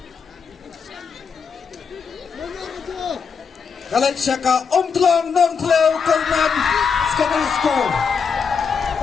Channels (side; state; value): right; quieter; 5.9 dB